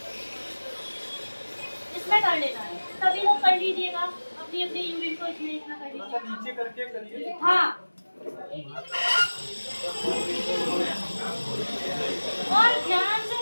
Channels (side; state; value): both; inverted; correlation -1.00